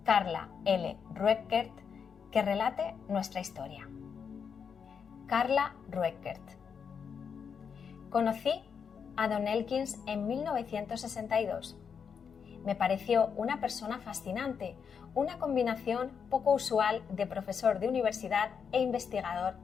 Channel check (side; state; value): right; quieter; 6.6 dB